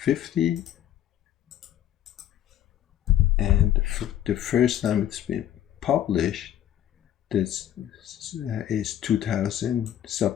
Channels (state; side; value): quieter; right; 11.4 dB